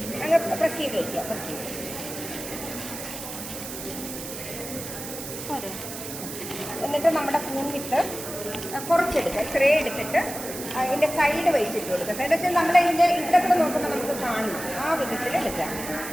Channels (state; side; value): noise; right; hiss, 9 dB below the sound